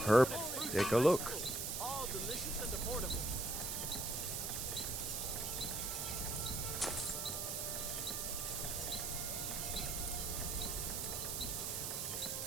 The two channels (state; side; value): noise; right; hiss, 1 dB below the sound